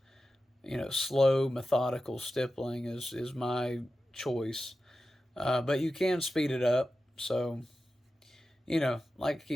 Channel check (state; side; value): normal; both; correlation 0.92